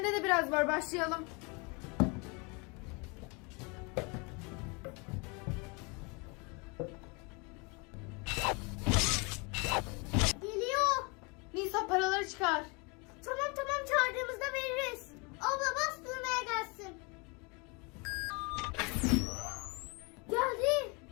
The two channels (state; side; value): quieter; right; 30.4 dB